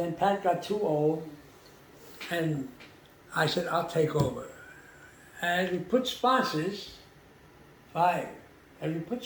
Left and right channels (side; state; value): both; identical; correlation 1.00